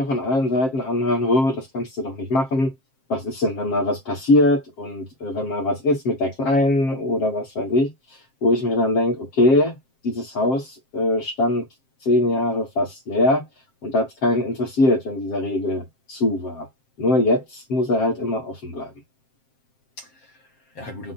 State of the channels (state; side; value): late; right; 7.6 ms